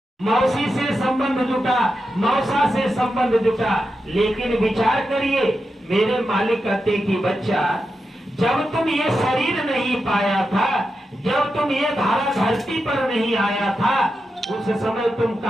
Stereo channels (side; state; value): both; normal; correlation 0.88